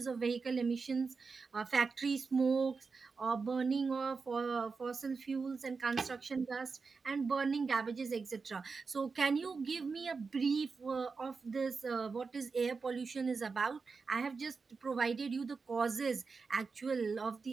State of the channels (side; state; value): left; quieter; 4.8 dB